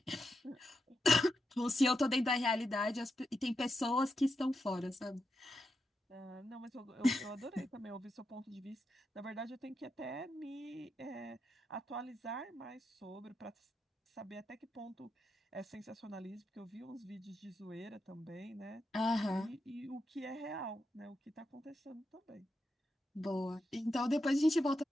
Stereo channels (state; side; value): normal; both; correlation 0.86